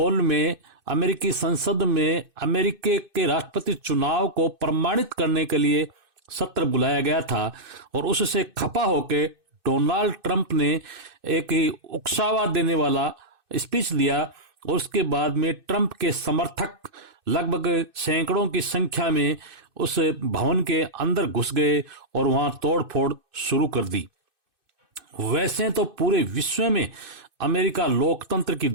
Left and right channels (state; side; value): late; left; 2.6 ms